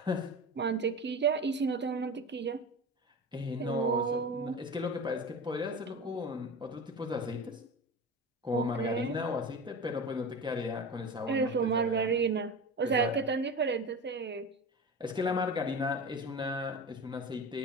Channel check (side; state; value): both; normal; correlation 0.30